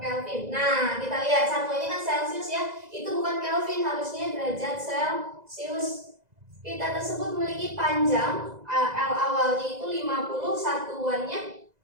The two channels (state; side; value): late; left; 2.0 ms